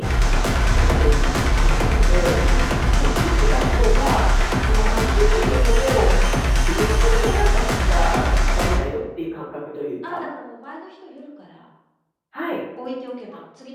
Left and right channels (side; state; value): both; identical; correlation 1.00